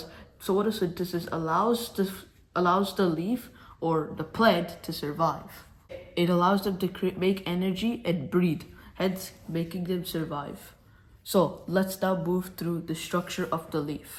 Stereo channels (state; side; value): identical; both; correlation 1.00